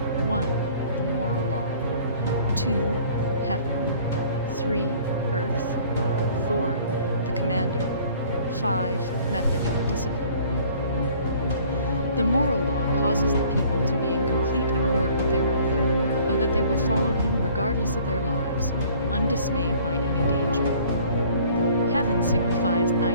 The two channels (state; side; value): inverted; both; correlation -0.53